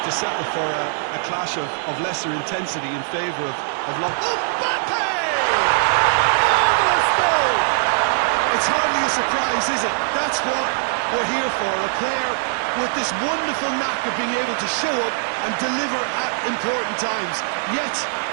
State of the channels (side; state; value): left; silent; digital silence